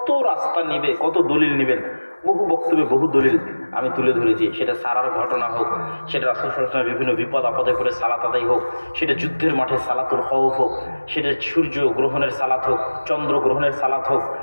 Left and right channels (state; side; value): inverted; both; correlation -1.00